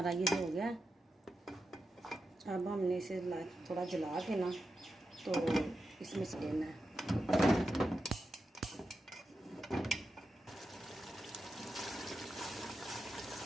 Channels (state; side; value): normal; both; correlation 0.88